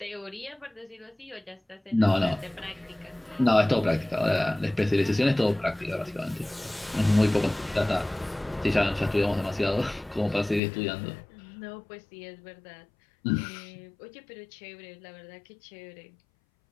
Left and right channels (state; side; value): drops out; right; at 10.6 s